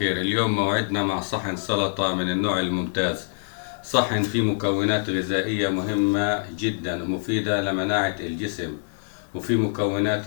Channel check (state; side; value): silent; right; 55 dB below the other